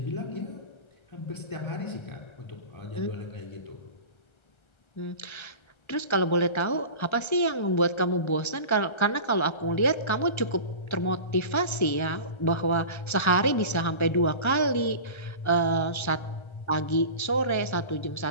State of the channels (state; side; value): late; right; 1.3 ms